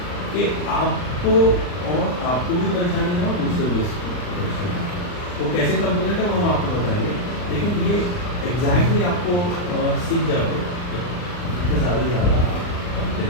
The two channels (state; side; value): late; right; 39 ms